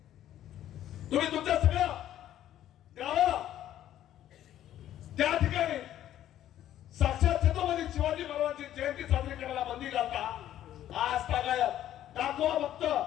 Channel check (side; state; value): right; quieter; 12.0 dB